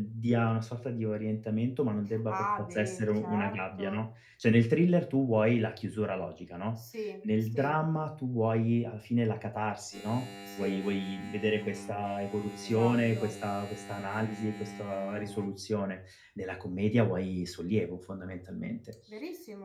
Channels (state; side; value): identical; both; correlation 1.00